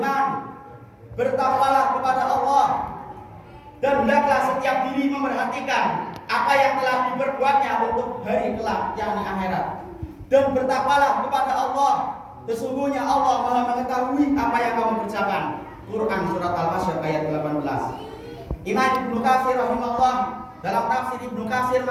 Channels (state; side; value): identical; both; correlation 1.00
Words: bertakwalah kepada Allah dan hendaklah setiap diri memperhatikan apa yang telah diperbuatnya untuk hari kelak, yakni akhirat. Dan bertakwalah kepada Allah, sesungguhnya Allah Maha mengetahui apa yang kamu kerjakan. Quran surat Al-Hasyr ayat 18. Imam Ibnu Katsir rahimahullah dalam tafsir Ibnu Katsir